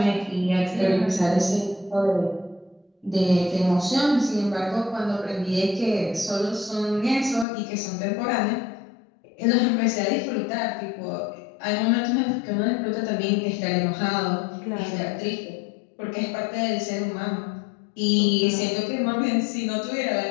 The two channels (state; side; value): drops out; right; at 7.5 s